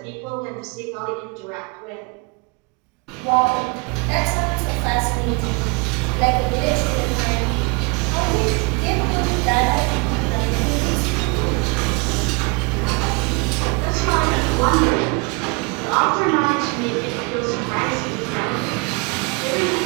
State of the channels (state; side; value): quieter; left; 31.0 dB